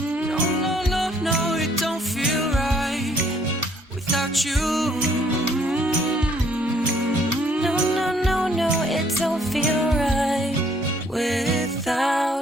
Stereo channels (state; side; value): normal; both; correlation 0.64